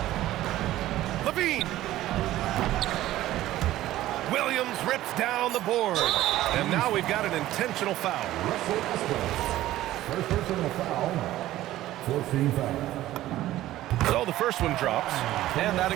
Levine. Williams rips down the board. And now we've got an intentional foul. Russell Westbrook. First personal foul. 14 foul. So the first one drops, and that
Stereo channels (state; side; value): quieter; left; 14.9 dB